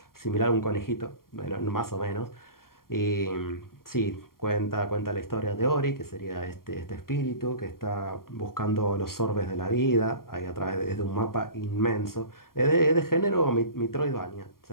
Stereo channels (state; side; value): late; right; 0.92 ms